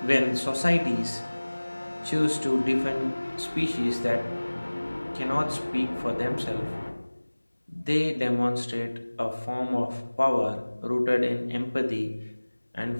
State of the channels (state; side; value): inverted; both; correlation -1.00